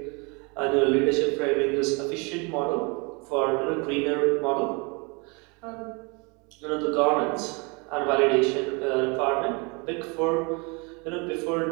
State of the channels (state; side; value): quieter; left; 30.8 dB